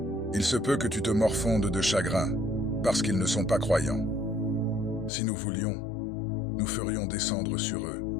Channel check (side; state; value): right; drops out; at 5.1 s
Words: Il se peut que tu te morfondes de chagrin, parce qu'ils ne sont pas croyants. Si nous voulions, nous ferions descendre sur eux,